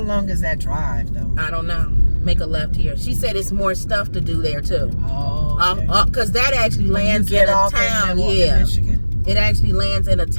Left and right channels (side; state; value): both; inverted; correlation -1.00